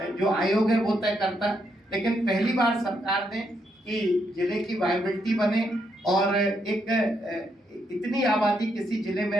जो आयोग है वो तय करता। लेकिन पहली बार सरकार ने कि जिले की वायबिलिटी बने और एक इतनी आबादी किसी जिले में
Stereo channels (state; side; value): normal; both; correlation 0.77